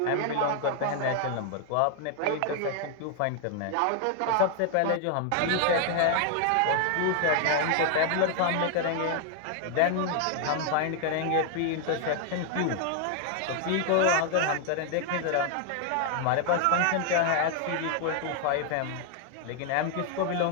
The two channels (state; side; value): different; both; correlation 0.00